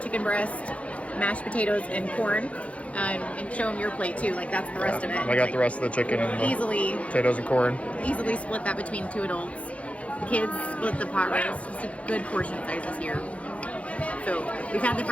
chicken breast, mashed potatoes, and corn. And show them your plate too. Like that's the rest of it. I got the rest of the chicken and the Easily potatoes and corn. split that between 2 adults. The kids split the pot roast. It's a good portion sizes here. So we've had the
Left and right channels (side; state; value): right; late; 0.064 ms